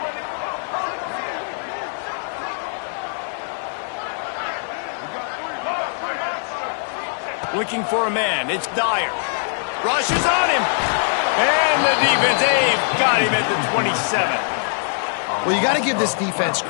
Looking for a man. It's Dyer. Rushes on him. And the defense, they've got him at the 27. Well, you got to give this defense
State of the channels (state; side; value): silent; right; 64 dB below the other